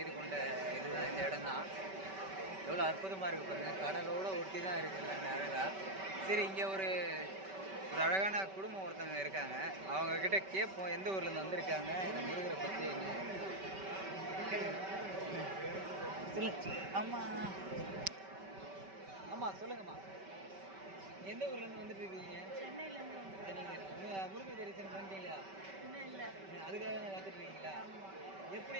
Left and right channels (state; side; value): late; left; 5.2 ms